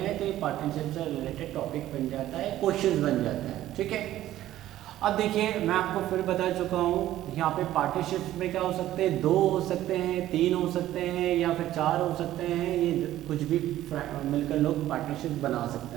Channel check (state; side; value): quieter; left; 13.8 dB